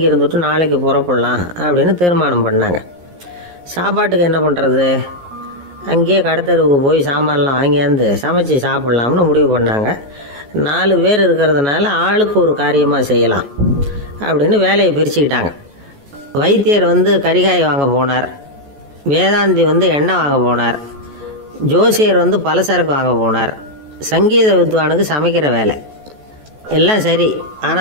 இருந்துட்டு நாளைக்கு புறப்படலாம் அப்படின்னு தீர்மானம் பண்ணாங்க. சாப்பாட்டுக்கு என்ன பண்ணுறது? அங்கேயே கடத்தெருவுக்கு போய் சாமான்லாம் வாங்கியாந்து சமைச்சு சாப்பிட்லாம்னு முடிவு பண்ணாங்க. 4 பேர் இருக்கிறதுனால ஆளுக்கு ஒரு காரியமாக செய்யலாம் அப்படின்னு வேலையை பிரிச்சுக்கிட்டாங்க. வைத்தியர் கரிகாய் வாங்க போனார். வேதாந்தி எண்ணெய் வாங்க போனார். ஜோசியர் பலசரக்கு வாங்க போனார். சங்கீத வித்வானுக்கு சமைக்கிற வேலை. எல்லாம் சரி.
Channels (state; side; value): late; left; 14 ms